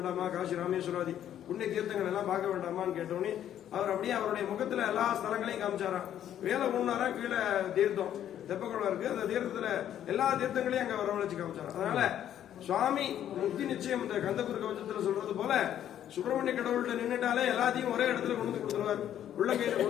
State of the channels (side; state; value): right; quieter; 10.7 dB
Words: காசி ராமேஸ்வராதி புண்ணிய தீர்த்தங்கள் எல்லாம் பார்க்க வேண்டாமான்னு கேட்டோன்னே அவர் அப்படியே அவருடைய முகத்துல எல்லா ஸ்தலங்களையும் காமிச்சாராம். வேலை ஒண்ணாரா கீழே தீர்த்தம் தெப்பக்குளம் இருக்கு, அந்த தீர்த்தத்துல எல்லா தீர்த்தங்களையும் அங்க வரவழைச்சு காமிச்சாராம். அதனால சுவாமி முக்தி நிச்சயம் இந்த கந்தகுரு கவச்சத்துல சொல்றது போல சுப்பிரமணிய கடவுள்கிட்ட நின்றுட்டாலே எல்லாத்தையும் ஒரே இடத்துல கொண்டு கொடுத்துருவார், உள்ள கையில